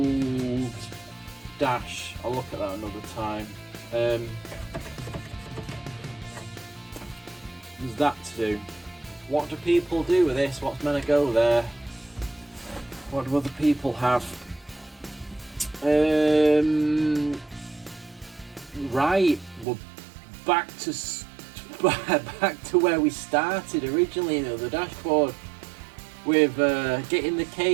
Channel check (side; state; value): left; drops out; at 19.7 s